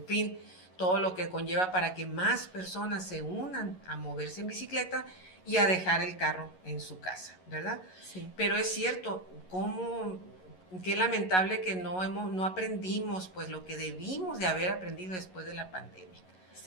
fin, todo lo que conlleva para que más personas se unan a moverse en bicicleta y a dejar el carro en su casa, ¿verdad? Sí. Pero es cierto, ¿cómo qué lamentable que no aprendimos pues lo que debimos de haber aprendido después de la pandemia.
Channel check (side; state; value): right; late; 11 ms